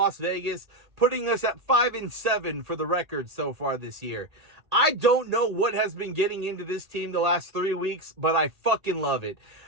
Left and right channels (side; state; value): left; late; 1.8 ms